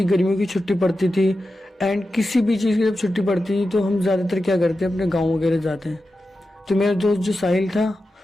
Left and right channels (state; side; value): normal; both; correlation 0.91